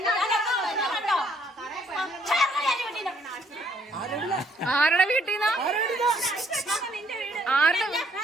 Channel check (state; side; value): normal; both; correlation 0.67